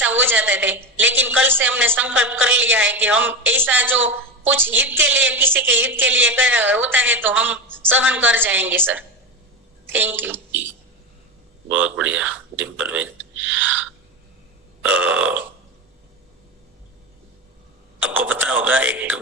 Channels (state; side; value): normal; both; correlation 0.20